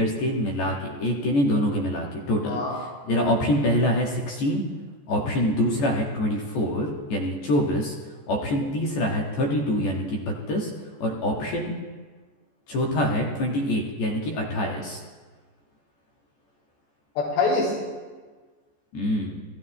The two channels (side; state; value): right; late; 14 ms